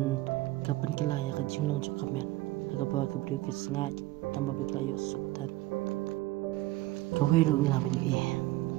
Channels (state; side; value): quieter; left; 18.3 dB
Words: kapan kelaya kajing long juga men agak bawa keberi kesengat tambah berkelaya sultan kau hidup ngelawan